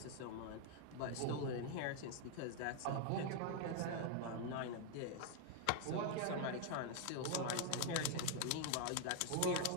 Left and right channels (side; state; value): both; different; correlation 0.00